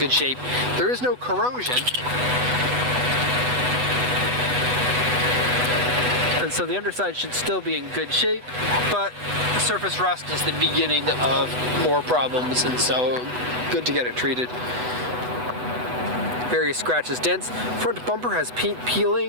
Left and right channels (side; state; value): left; late; 8.1 ms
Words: shape. There is no corrosion, and so the underside should still be in good shape, but the surface rust is the beginning of more problems, and so good to get it treated. Various scratches, dents. Front bumper has paint